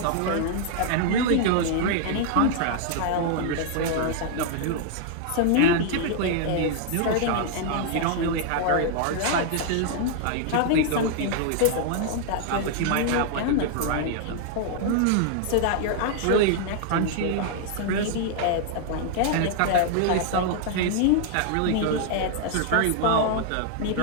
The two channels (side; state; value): both; different; correlation -0.01